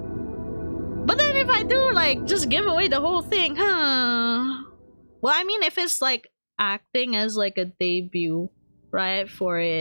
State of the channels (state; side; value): inverted; both; correlation -1.00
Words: But then if I do like just give away the whole thing, huh? Well, I mean, if it's like acting as like a debut, right, for